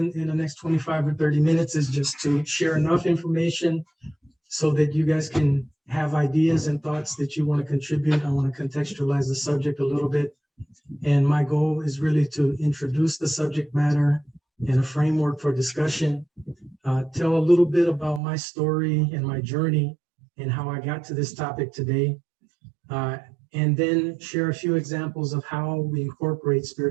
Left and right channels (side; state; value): left; drops out; at 18.2 s